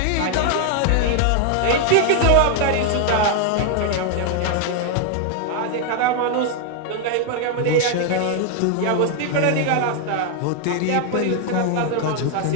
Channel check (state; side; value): different; both; correlation 0.00